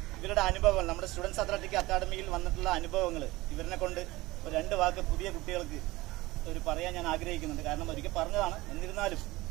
ഇവരുടെ അനുഭവങ്ങൾ, നമ്മുടെ സ്റ്റുഡൻസ് അത്ലറ്റിക് അക്കാഡമിയിൽ വന്നിട്ടുള്ള അനുഭവങ്ങൾ ഇവരിനെ കൊണ്ട് ഒരു 2 വാക്ക് പുതിയ കുട്ടികൾക്ക് പറയാൻ ഞാൻ ആഗ്രഹിക്കുന്നുണ്ട്. കാരണം ഒരിക്കൽ പറഞ്ഞതാണ്, എന്നിരുന്നാലും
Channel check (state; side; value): quieter; left; 19.9 dB